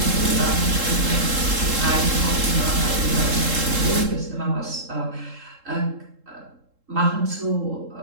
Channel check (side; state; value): left; late; 3.7 ms